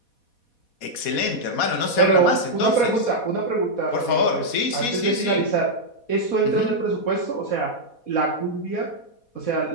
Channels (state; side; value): late; right; 4.2 ms